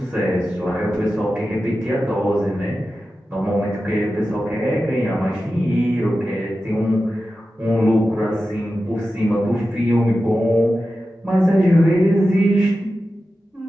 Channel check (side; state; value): both; normal; correlation 0.92